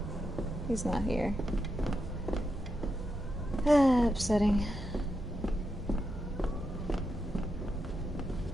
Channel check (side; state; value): both; normal; correlation 0.85